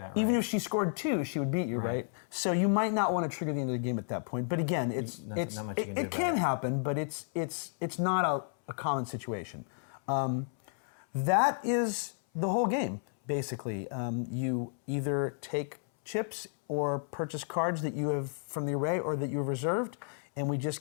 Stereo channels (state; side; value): silent; right; 56 dB below the other